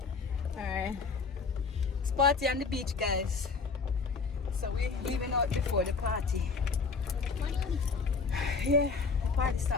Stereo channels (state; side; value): quieter; right; 4.7 dB